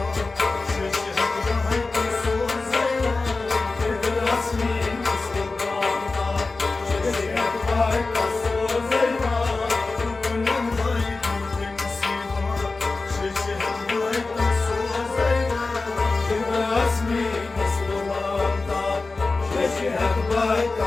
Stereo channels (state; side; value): quieter; right; 3.7 dB